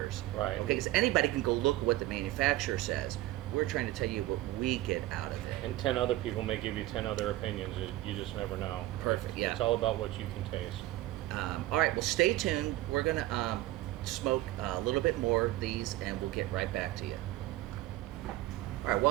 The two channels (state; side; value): quieter; left; 16.4 dB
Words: Right. Okay, because anybody can go look at what the manufacturer says. We're trying to tell you what we get out of it. And 10 other people may give you 10 other opinions. You just never know. Perfect, yeah. It's all about what you can taste. All right, well, stay tuned. We're going to smoke a little bit more of these, and we'll get right back to you. All right,